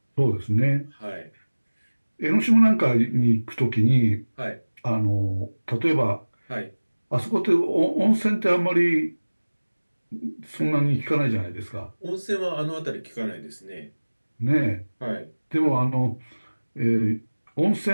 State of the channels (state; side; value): inverted; both; correlation -1.00